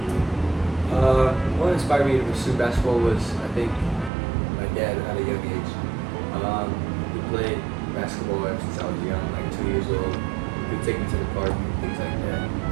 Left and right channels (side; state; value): left; drops out; at 4.1 s